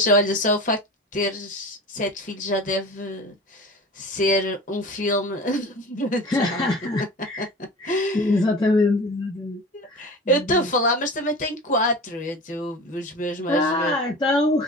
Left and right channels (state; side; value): normal; both; correlation 0.35